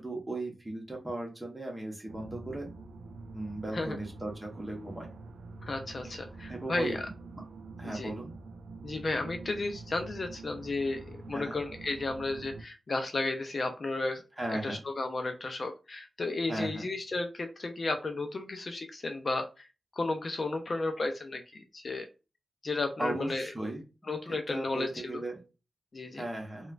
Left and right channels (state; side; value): normal; both; correlation 0.92